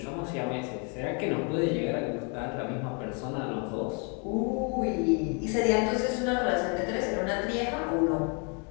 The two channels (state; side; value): quieter; right; 36.4 dB